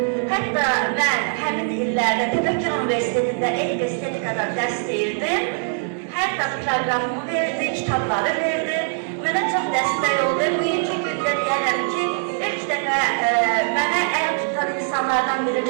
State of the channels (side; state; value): left; silent; 58 dB below the other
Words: Hətta mən həmin illərdə Təbəkkür Universitetində estetikada dərs deyirdim. Hər dəfə proqramımı verdi, kitabları verdi. Mənə çox dəstək oldu. Bugünkü gündə deyərəm ki, ilk dəfə mənə əl tutan insanlardan biri